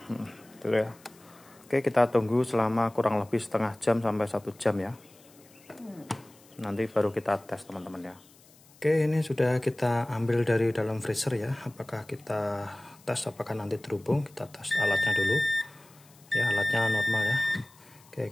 dulu ya. Oke, kita tunggu selama kurang lebih setengah jam sampai 1 jam ya. Nanti baru kita tes teman-teman ya. Oke, ini sudah kita ambil dari dalam freezer ya. Apakah kita tes apakah nanti terhubung? Kita tes alatnya dulu ya, alatnya normal ya. Oke,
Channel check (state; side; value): noise; left; hiss, 27 dB below the sound